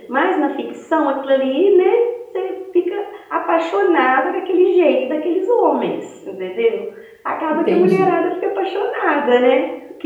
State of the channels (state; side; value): identical; both; correlation 1.00